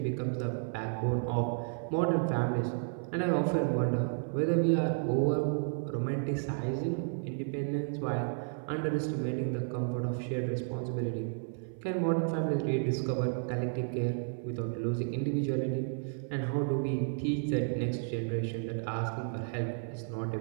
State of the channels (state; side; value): silent; left; 56 dB below the other